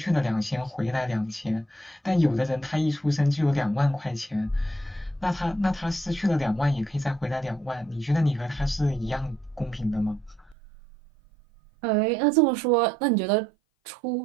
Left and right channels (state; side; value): drops out; left; at 10.6 s